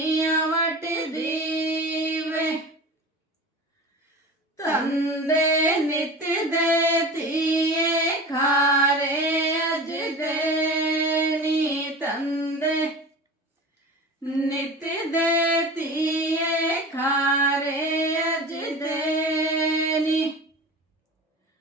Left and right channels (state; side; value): normal; both; correlation 0.33